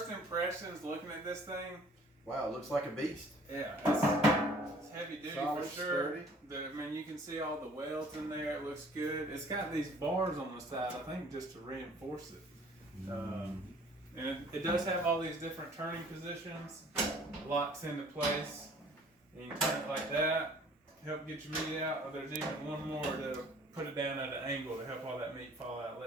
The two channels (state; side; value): normal; both; correlation 0.53